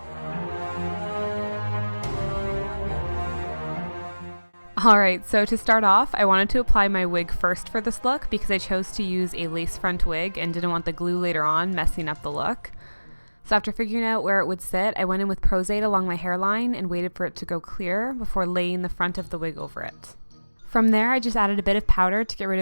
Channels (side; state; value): both; inverted; correlation -1.00